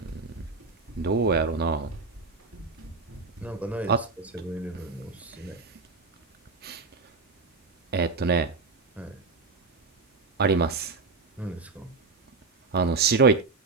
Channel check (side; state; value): left; quieter; 4.0 dB